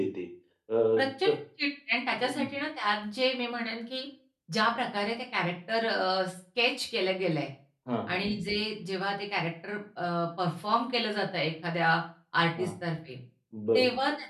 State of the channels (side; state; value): both; identical; correlation 1.00